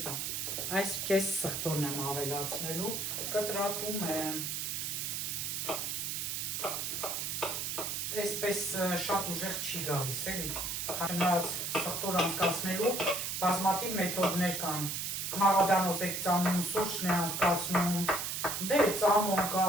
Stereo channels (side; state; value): right; noise; hiss, 2 dB below the sound